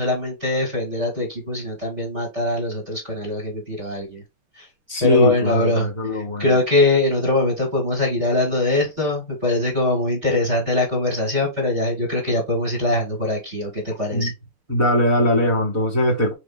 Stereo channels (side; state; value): left; late; 6.7 ms